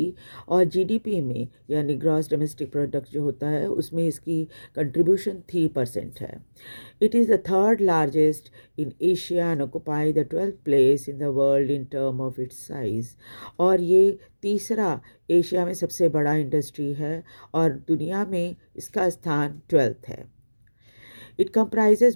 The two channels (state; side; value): inverted; both; correlation -1.00